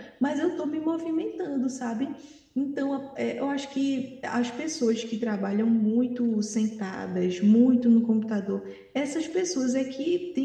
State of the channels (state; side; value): identical; both; correlation 1.00